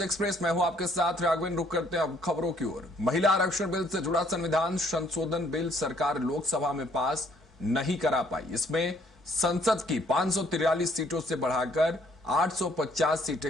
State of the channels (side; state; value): both; normal; correlation 0.64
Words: एक्सप्रेस। मैं हूं आपके साथ राघवेंद्र। रुक करते हैं अब खबरों की ओर। महिला आरक्षण बिल से जुड़ा संविधान संशोधन बिल सरकार लोकसभा में पास नहीं करा पाई। इसमें संसद की 543 सीटों से बढ़ाकर 850